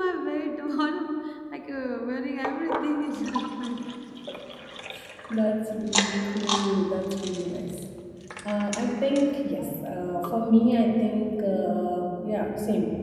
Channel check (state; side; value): identical; both; correlation 1.00